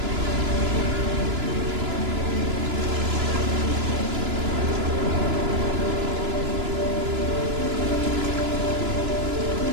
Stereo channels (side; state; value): left; late; 2.9 ms